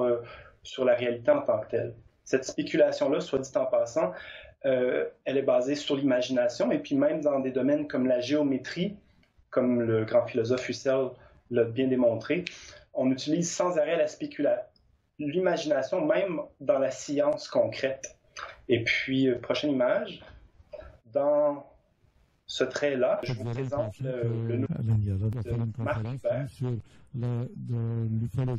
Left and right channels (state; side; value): identical; both; correlation 1.00